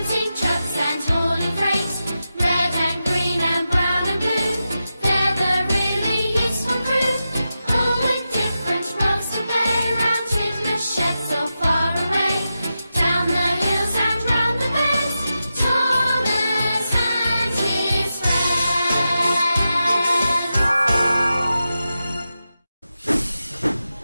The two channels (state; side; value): inverted; both; correlation -0.90